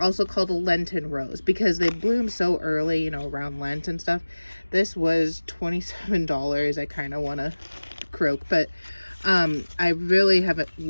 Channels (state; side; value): inverted; both; correlation -1.00